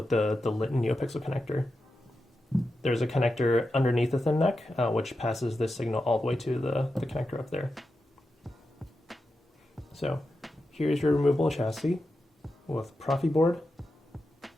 the lit Neopixel connector. There's a connector underneath the thin neck which passes this signal all the way to the connector up there. So here's your removable chassis with Proffieboard,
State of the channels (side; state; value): both; normal; correlation 0.89